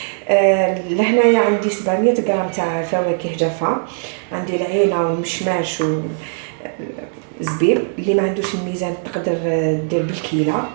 لهنايا عندي 700 غرام تاع فواكه جافه، عندي العينه والمشماش والزبيب. اللي ما عندوش الميزان تقدر دير بالكيله.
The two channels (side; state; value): left; silent; digital silence